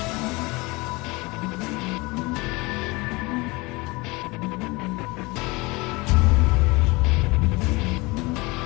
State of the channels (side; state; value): right; quieter; 24.5 dB